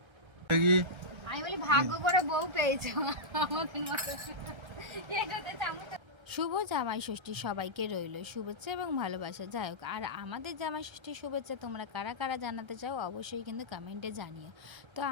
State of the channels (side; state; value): left; late; 1.3 ms